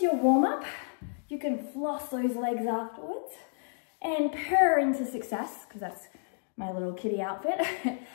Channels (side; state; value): right; silent; digital silence